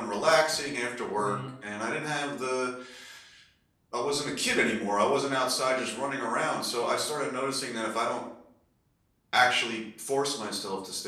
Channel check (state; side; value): identical; both; correlation 1.00